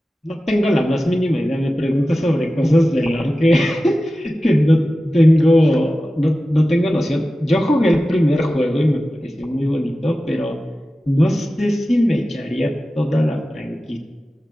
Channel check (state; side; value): normal; both; correlation 0.95